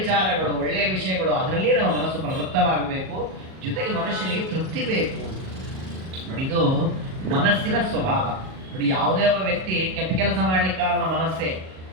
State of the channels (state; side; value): late; left; 38 ms